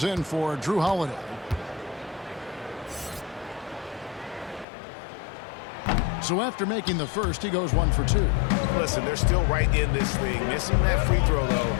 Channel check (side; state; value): right; drops out; at 4.7 s